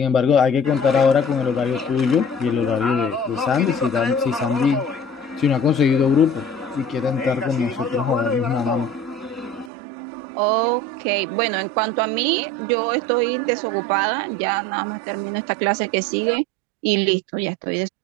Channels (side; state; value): left; drops out; at 9.7 s